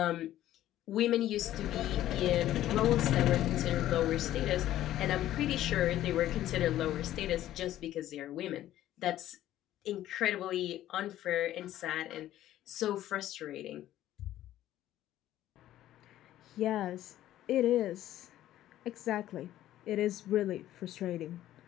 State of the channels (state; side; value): quieter; right; 13.3 dB